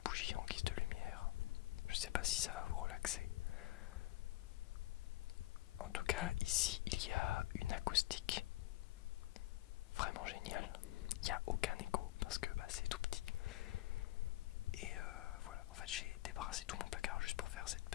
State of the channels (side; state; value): right; quieter; 16.8 dB